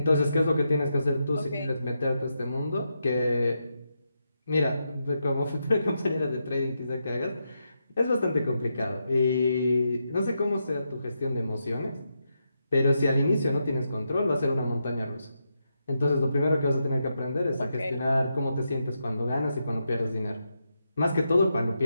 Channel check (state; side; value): inverted; both; correlation -0.84